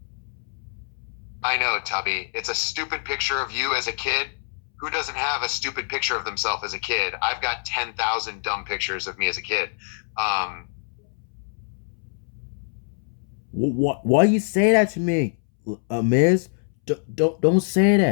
I know, Tubby. It's a stupid picture of you as a kid. Who doesn't have a stupid picture of themselves as a kid? I've got 10,000 dumb pictures of me as a kid. Why you say that to me, Miss? Don't say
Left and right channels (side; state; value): right; silent; 62 dB below the other